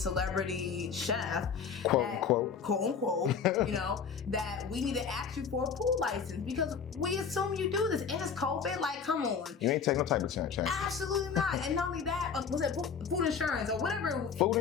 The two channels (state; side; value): quieter; right; 6.4 dB